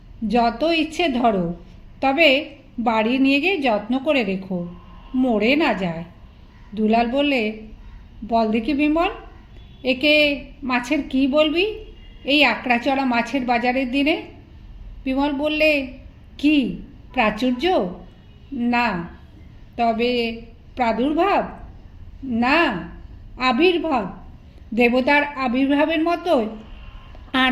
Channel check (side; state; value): both; identical; correlation 1.00